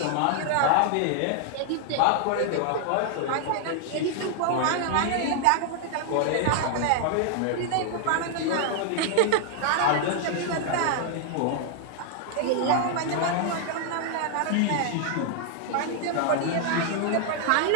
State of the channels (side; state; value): both; different; correlation 0.00